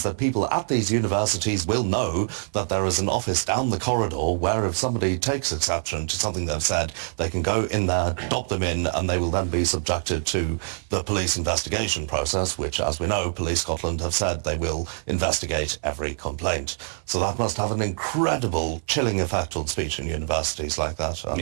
that people at these universities will know that there is an office down the corridor where if somebody takes exception to something they've said, they can go in there, adopt them in, and they will then be subjected to the police investigation process, which, as we know, Police Scotland have said they will investigate every complaint. So that must have an incredible chilling effect on speech in universities like that.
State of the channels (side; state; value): left; silent; 55 dB below the other